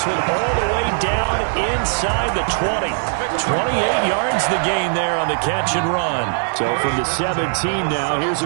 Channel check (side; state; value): left; silent; digital silence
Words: one all the way down inside the 20. 28 yards the gain there on the catch and run. So from the 17 now, here's a